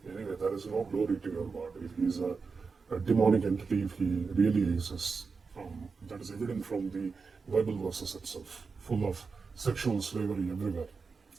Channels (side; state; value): left; quieter; 4.8 dB